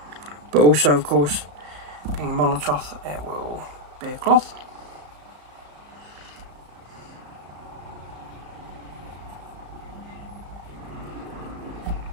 But also, of course, being a Molotov, it will be a cloth.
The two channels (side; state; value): left; late; 34 ms